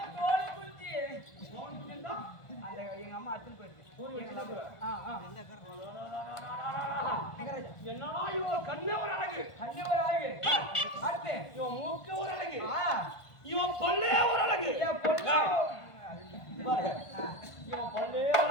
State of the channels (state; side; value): late; right; 1.5 ms